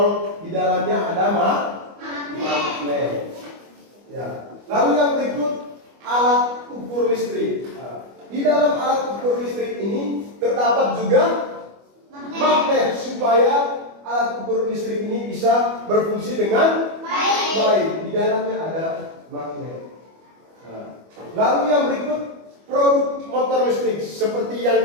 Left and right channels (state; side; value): late; left; 25 ms